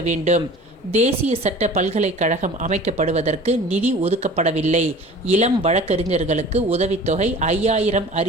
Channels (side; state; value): both; normal; correlation 0.43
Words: வேண்டும். தேசிய சட்ட பல்கலைக்கழகம் அமைக்கப்படுவதற்கு நிதி ஒதுக்கப்படவில்லை. இளம் வழக்கறிஞர்களுக்கு உதவித்தொகை 5,000